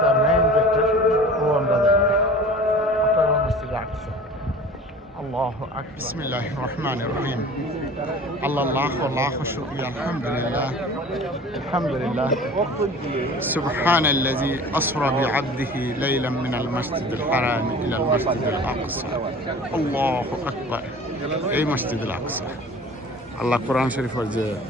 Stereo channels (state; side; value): normal; both; correlation 0.42